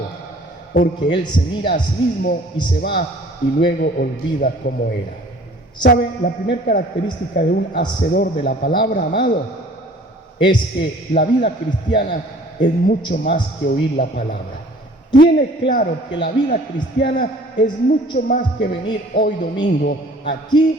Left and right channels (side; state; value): both; normal; correlation 0.51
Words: porque él se mira a sí mismo y se va y luego olvida cómo era. ¿Sabe? La primera característica de un hacedor de la palabra, amado, es que la vida cristiana es mucho más que oír la palabra. Tiene claro que la vida cristiana es mucho más que venir hoy domingo